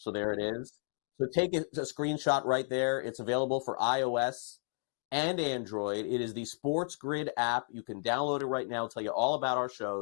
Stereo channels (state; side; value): silent; right; 56 dB below the other